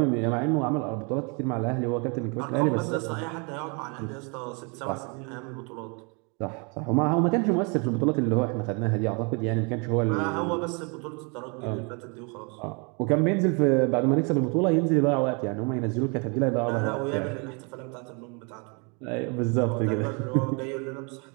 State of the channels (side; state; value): left; quieter; 33.5 dB